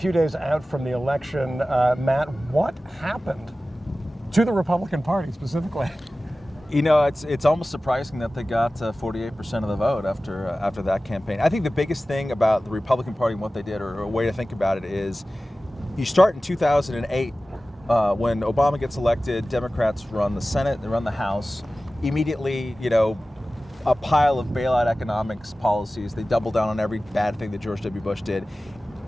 days out from the election. Matt, what happened to the Republican Party specifically? You know, it's almost surprising that they got 48% of the vote after that campaign. I think the biggest thing about the Republican Party and what they did, or a way to think about it, is you start in 2008 when Obama gets elected. Democrats run the Senate, they run the House. Immediately, you know, a pile of bailout economics policies. They double down on every bad thing that George W. Bush did.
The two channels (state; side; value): normal; both; correlation 0.96